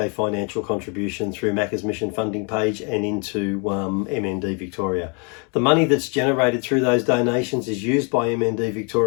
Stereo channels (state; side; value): quieter; right; 35.4 dB